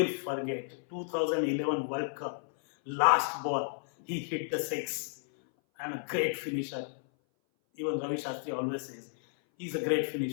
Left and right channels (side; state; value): right; silent; 56 dB below the other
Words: forget 2011 World Cup, last ball, he hit the six, and a great finisher. Even Ravi Shastri always says he's a great